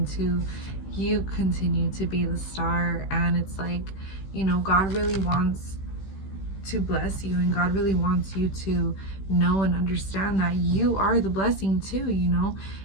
You continue to be the star, and it's like, you know, God really wants to bless you, and God really wants you to know and understand that you are the blessing too, you know.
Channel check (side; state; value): right; late; 16 ms